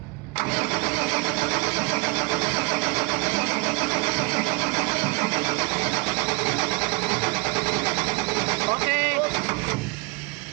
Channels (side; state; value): left; quieter; 28.8 dB